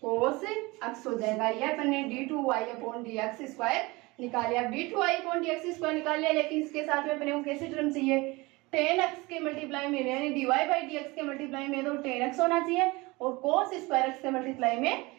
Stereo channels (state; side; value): quieter; left; 23.3 dB